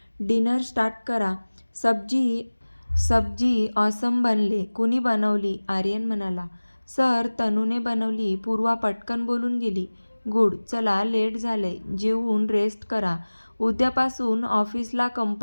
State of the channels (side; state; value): both; inverted; correlation -1.00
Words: डिनर स्टार्ट करा. सब्जी ऑसम बनले. कुणी बनवली? आर्यन म्हणाला. सर, तनूने बनवली. पूर्वा पटकन बोलून गेली. गुड. चला, लेट झालंय. जेवून रेस्ट करा. उद्यापासून ऑफिसला